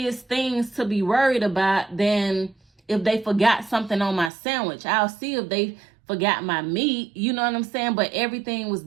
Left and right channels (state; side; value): drops out; left; at 4.3 s